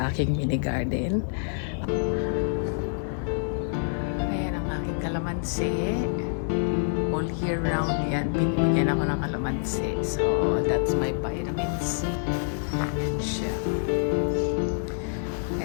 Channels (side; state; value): right; silent; digital silence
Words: aking mini garden. Ayan ang aking kalamansi. All year round yan. Binibigyan ako ng kalamansi. So, that's my vitamin C. Ayan siya.